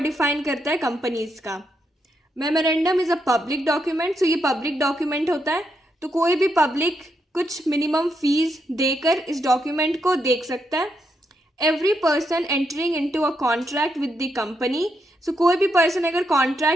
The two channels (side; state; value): both; normal; correlation 0.81